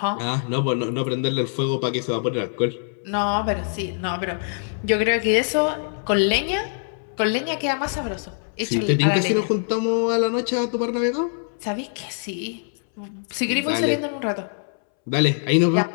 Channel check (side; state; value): right; silent; 63 dB below the other